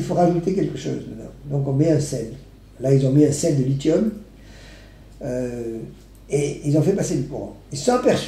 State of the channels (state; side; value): identical; both; correlation 1.00